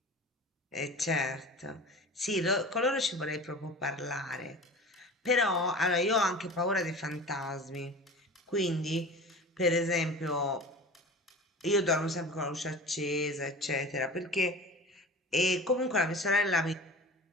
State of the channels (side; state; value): both; normal; correlation 0.36